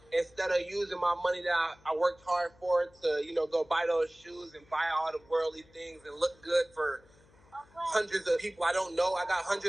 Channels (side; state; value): left; noise; hum, 28 dB below the sound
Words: Instead of using my money that I worked hard for to, you know, go buy those shoes and buy all the worldly things and look good for hundreds of people I don't know. I got